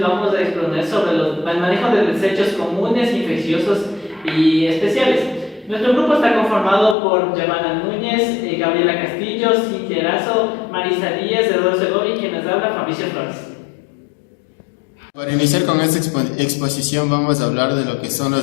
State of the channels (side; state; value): right; drops out; at 7.0 s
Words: a exponer sobre el manejo de desechos comunes, infecciosos y especiales. Nuestro grupo está conformado por Giovanna Núñez, Gabriela Castillo, Cintia Erazo, Marisa Díaz, Eduardo Segovia y quien nos habla, Fabricio Flores. Para iniciar con esta exposición vamos a hablar de lo que son